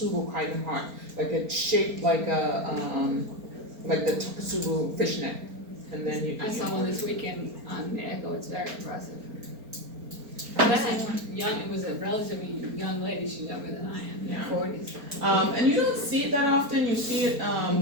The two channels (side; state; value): left; late; 4.3 ms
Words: kind of heart, like it's shaped like a like the Takotsubo fishnet. And then you. I saw one this weekend on the Echo. It's very impressive. Young, it was a relatively young lady. She's younger than I am, in Yeah. her 40s. And you don't see it that often. You see it